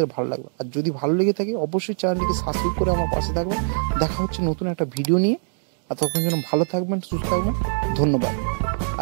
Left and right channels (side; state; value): left; silent; digital silence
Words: ভালো লাগবে। আর যদি ভালো লেগে থাকে অবশ্যই চ্যানেলটিকে সাবস্ক্রাইব করে আমার পাশে থাকবেন। দেখা হচ্ছে নতুন একটা ভিডিও নিয়ে। আর তখন যেন ভালো থাকবেন, সুস্থ থাকবেন। ধন্যবাদ।